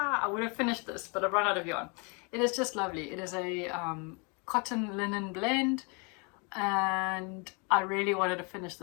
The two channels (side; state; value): right; quieter; 33.1 dB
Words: would have finished this, but I've run out of yarn. It is just lovely. It is a cotton linen blend, and I really wanted to finish